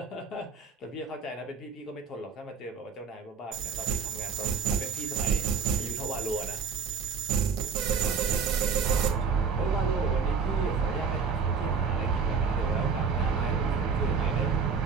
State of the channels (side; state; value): left; quieter; 5.6 dB